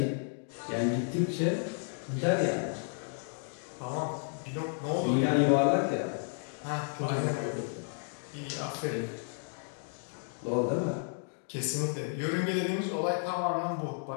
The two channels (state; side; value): silent; right; 56 dB below the other